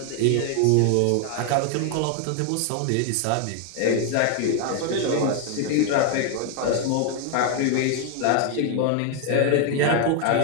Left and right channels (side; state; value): both; different; correlation 0.00